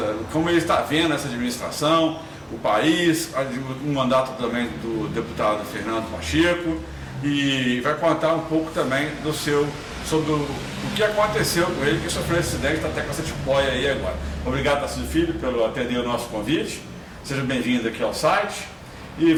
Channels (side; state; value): both; identical; correlation 1.00